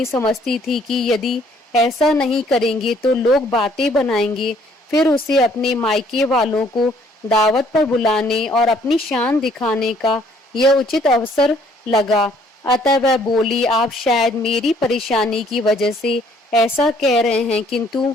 समझती थी कि यदि ऐसा नहीं करेंगे तो लोग बातें बनाएंगे। फिर उसे अपने मायके वालों को दावत पर बुलाने और अपनी शान दिखाने का यह उचित अवसर लगा। अतः वह बोली, आप शायद मेरी परेशानी की वजह से ऐसा कह रहे हैं, किंतु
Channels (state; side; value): normal; both; correlation 0.62